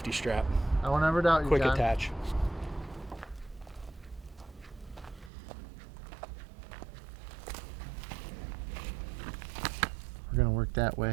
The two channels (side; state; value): left; drops out; at 5.3 s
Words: strap. I won't ever doubt you, Quick John. attach. We're gonna work that